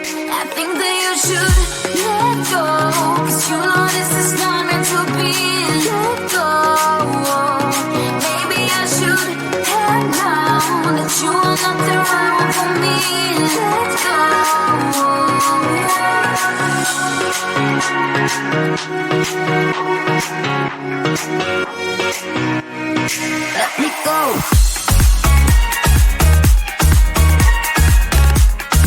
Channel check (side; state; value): both; identical; correlation 1.00